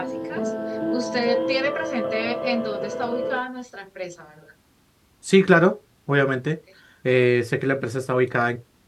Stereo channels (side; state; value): both; identical; correlation 1.00